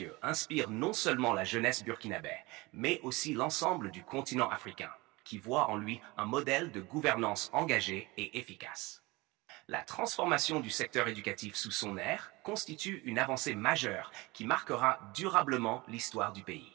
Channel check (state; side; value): quieter; left; 23.0 dB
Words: inspire non seulement la jeunesse burkinabé, mais aussi l'ensemble du continent africain, qui voit en lui un modèle de gouvernance engagée et efficace. La transformation du secteur éducatif sous son ère constitue une avancée majeure qui marquera durablement l'histoire du pays.